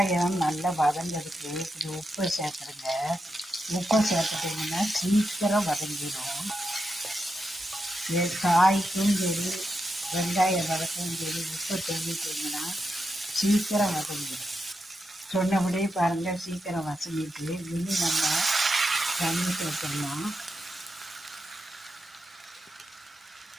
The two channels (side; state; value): both; normal; correlation 0.86